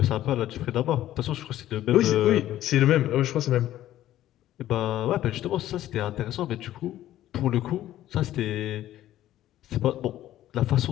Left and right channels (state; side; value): quieter; right; 13.4 dB